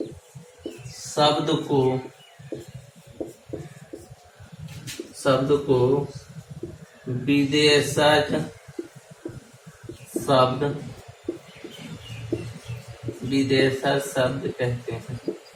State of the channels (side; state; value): both; identical; correlation 1.00